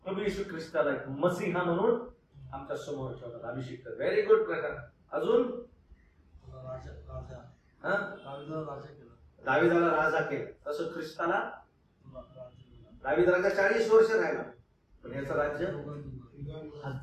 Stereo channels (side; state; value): both; identical; correlation 1.00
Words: प्रभू येशू ख्रिस्ताला मसीहा म्हणून आमच्या समोर ठेवतात. अभिषिक्त. व्हेरी गुड प्रकार. अजून दाविदाला राजा केलं तसं ख्रिस्ताला. दाविद राजा 40 वर्ष राहिला, पण याचं राज्य